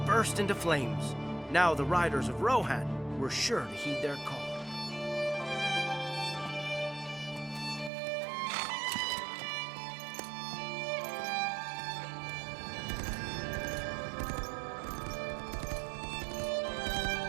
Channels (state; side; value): drops out; left; at 7.9 s